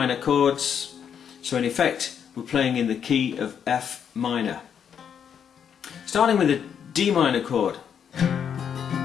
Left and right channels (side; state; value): right; quieter; 8.0 dB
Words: chords, so in effect we're playing in the key of F minor. Starting with the D minor chord